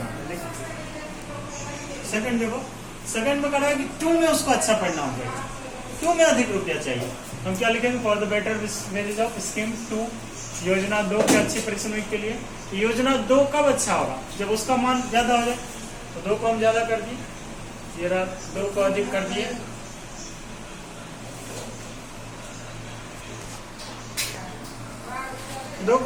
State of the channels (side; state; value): both; identical; correlation 1.00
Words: हैं। देखो सेकंड देखो, सेकंड में करना है कि 2 में उसको अच्छा परिणाम देगा, 2 में अधिक रुपया चाहिए, हम क्या लिखेंगे for the better wages of scheme 2 योजना 2 के अच्छे परिश्रमिक के लिए। योजना 2 कब अच्छा होगा जब उसका मान ज्यादा हो जाए, तो 2 को हम ज्यादा कर दिए, ये रहा 2 को अधिक कर दिए, दो